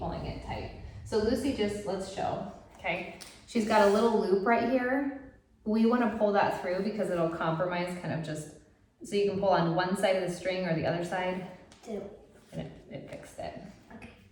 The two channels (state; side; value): identical; both; correlation 1.00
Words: it tight. So Lucy just, let's show, okay? She's got a little loop right here. We wanna pull that through because it'll compromise kind of just, so you can pull on one side of the string or the other side. Do. And it fixed it. Okay.